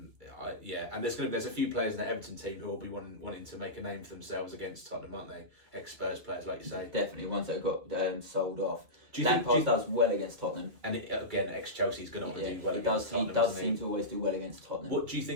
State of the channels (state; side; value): late; left; 2.4 ms